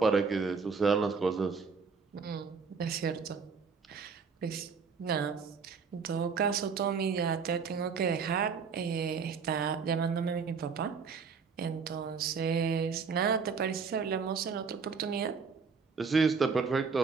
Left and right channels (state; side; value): quieter; left; 5.5 dB